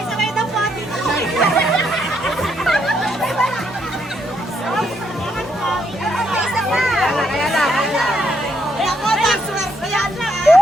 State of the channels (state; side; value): normal; both; correlation 0.75